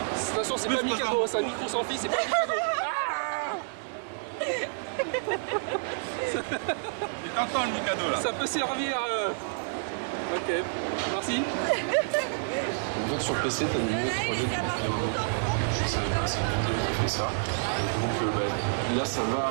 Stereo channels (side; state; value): left; silent; digital silence